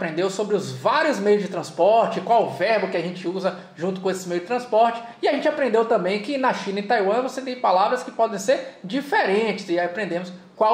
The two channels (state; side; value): identical; both; correlation 1.00